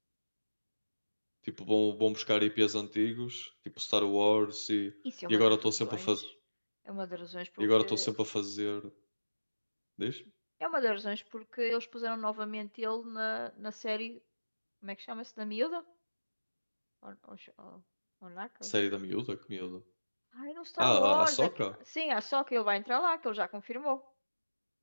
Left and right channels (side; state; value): both; inverted; correlation -1.00